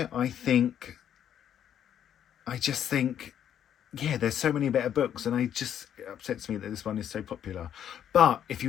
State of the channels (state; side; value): quieter; right; 9.7 dB